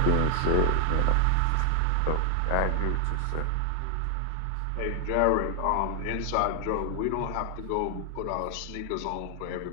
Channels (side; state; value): both; different; correlation 0.00